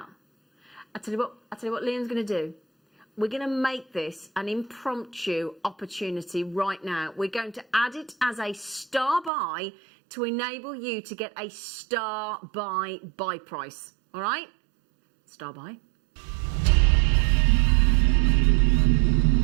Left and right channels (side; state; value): left; drops out; at 9.3 s